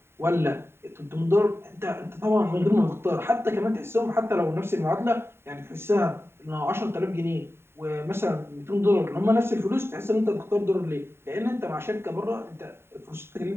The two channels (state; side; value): late; left; 0.12 ms